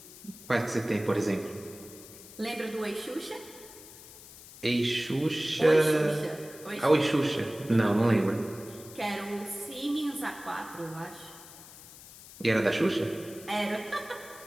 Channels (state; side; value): noise; left; hiss, 18 dB below the sound